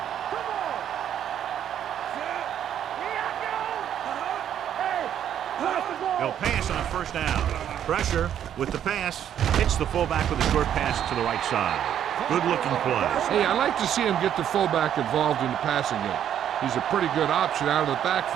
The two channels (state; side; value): quieter; left; 9.9 dB